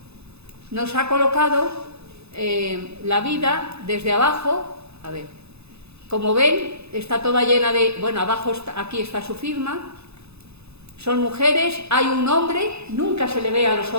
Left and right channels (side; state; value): left; late; 0.79 ms